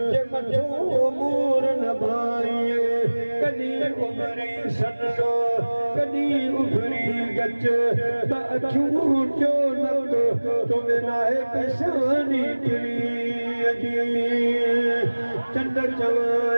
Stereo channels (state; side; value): inverted; both; correlation -1.00